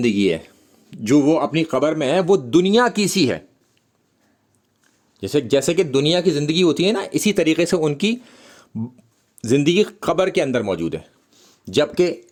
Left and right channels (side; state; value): both; identical; correlation 1.00